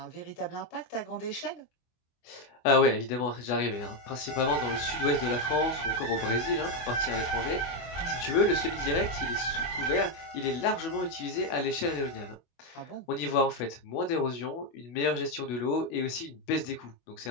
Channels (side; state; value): right; late; 24 ms